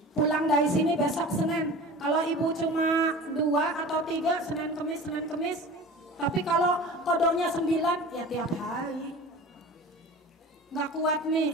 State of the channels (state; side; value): normal; both; correlation 0.37